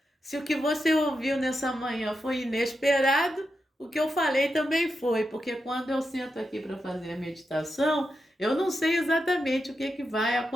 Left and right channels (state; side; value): normal; both; correlation 0.87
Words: se o que você ouviu nessa manhã foi inesperado, o que eu falei também foi, porque quando eu sento aqui para fazer a meditação, eu não sei exatamente o que vai